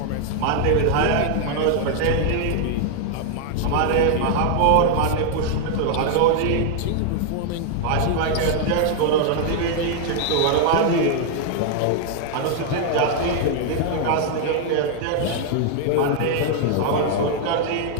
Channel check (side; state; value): both; different; correlation 0.00